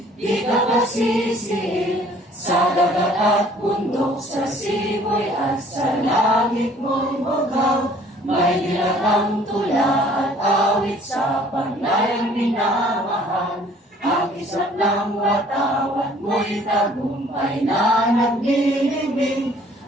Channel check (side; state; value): both; normal; correlation 0.56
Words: di ka pasisir, sa dagat at bundok, sa siboy at sa langit mo'y bugaw. May nilatang tula at awit sa paglayang minamahal. Ang isang ng watawat mo'y tagumpay na naglilibing.